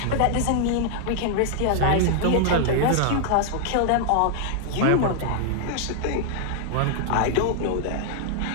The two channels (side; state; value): both; different; correlation -0.01